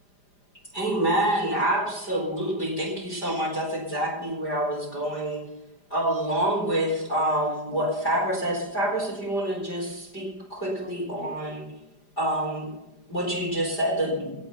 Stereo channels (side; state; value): right; late; 5.0 ms